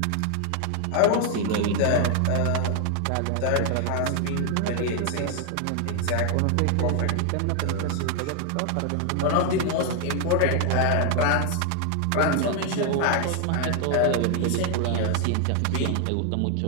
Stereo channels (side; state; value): both; different; correlation 0.00